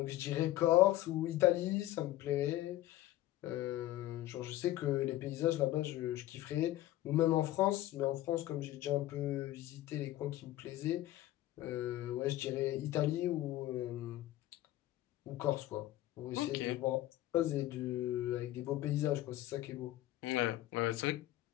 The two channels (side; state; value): right; quieter; 15.1 dB